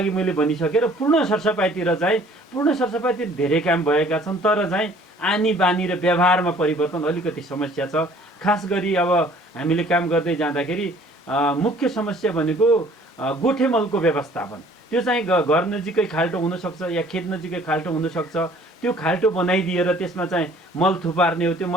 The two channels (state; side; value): normal; both; correlation 0.55